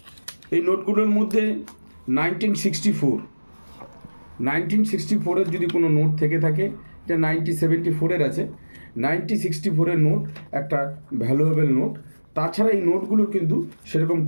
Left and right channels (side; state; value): both; inverted; correlation -1.00